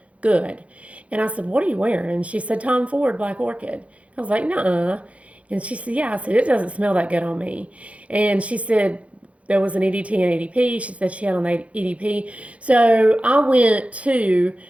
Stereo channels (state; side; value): late; left; 0.064 ms